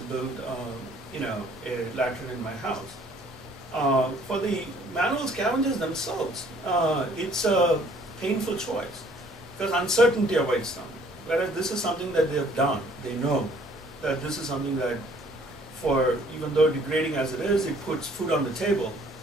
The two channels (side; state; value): both; normal; correlation 0.59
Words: build a latrine in my house? For the manual scavengers themselves, it's a painful choice because uncertainty awaits them. Whereas this is something that they have done. They know that this is something that, even though degrading as it is, it puts food on the table,